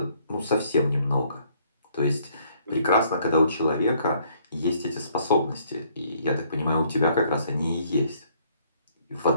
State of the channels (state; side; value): inverted; both; correlation -0.65